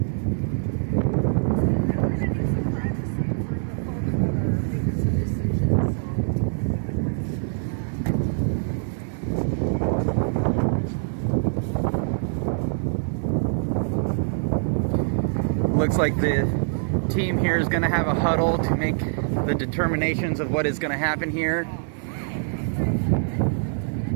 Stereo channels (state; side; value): silent; left; digital silence